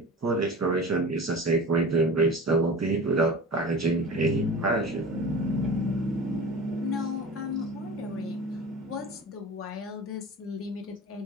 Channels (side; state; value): both; normal; correlation 0.35